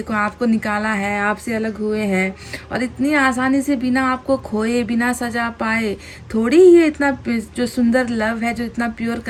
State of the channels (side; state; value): both; identical; correlation 1.00